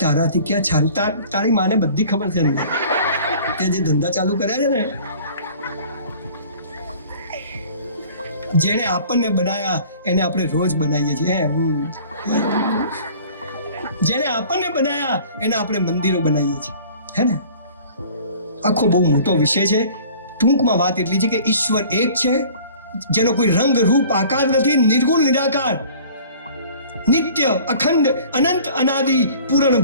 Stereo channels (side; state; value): both; inverted; correlation -0.48